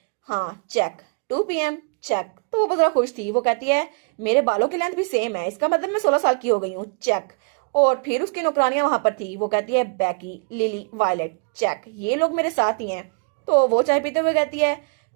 हाँ चेक, 2 PM चेक। तो वो बहुत जरा खुश थी। वो कहती है मेरे बालों की लेंथ भी सेम है, इसका मतलब मैं 16 साल की हो गई हूँ, चेक। और फिर उसकी नौकरानियां वहां पर थी। वो कहती है बैकी, लिली, वायलेट, चेक, ये लोग मेरे साथ ही हैं। तो वो चाय पीते हुए कहती है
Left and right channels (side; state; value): left; quieter; 37.5 dB